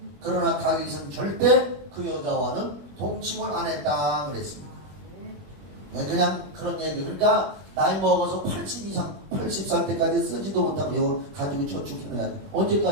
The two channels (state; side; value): late; left; 21 ms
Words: 그러나 다윗은 절대 그 여자와는 동침을 안 했다 그랬습니다. 그냥 그런 얘기. 그러니까 나이 먹어서 80 이상, 80살 때까지 쓰지도 못하고 이거 가지고 저축해놔야 돼.